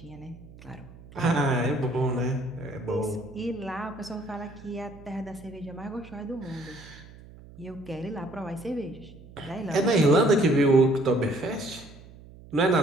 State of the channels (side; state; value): right; noise; hum, 20 dB below the sound